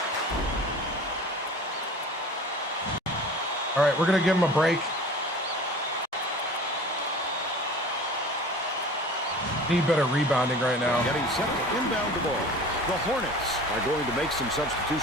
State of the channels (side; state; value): both; normal; correlation 0.41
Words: All right, we're going to give him a break. Need better rebounding right now. Getting set to inbound the ball. The Hornets are going to make some